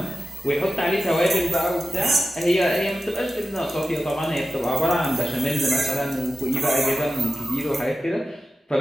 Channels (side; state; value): both; normal; correlation 0.93